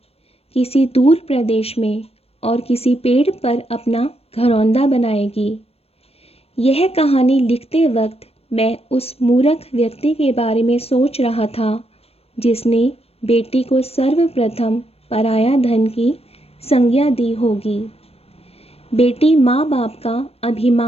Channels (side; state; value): right; late; 0.29 ms